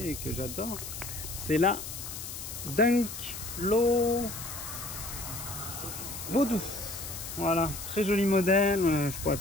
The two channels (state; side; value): noise; left; hiss, 8 dB below the sound